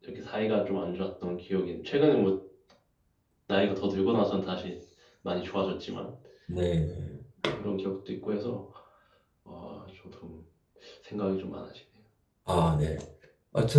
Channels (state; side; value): identical; both; correlation 1.00